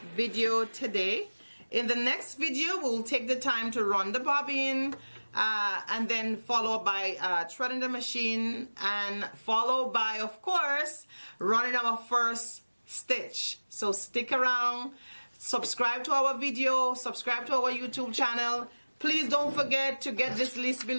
video today. In the next video, we'll take the time to run the bobbin, and then followed by threading the machine, and followed by, of course, running our first stitch. So stick around, subscribe to our video, subscribe to our YouTube channel. Please don't forget to get this list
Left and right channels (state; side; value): inverted; both; correlation -1.00